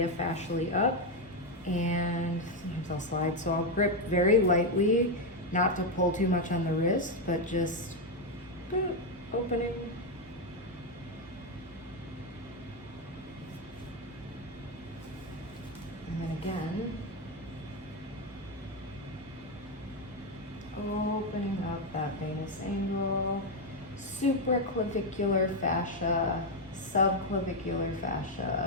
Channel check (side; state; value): both; normal; correlation 0.05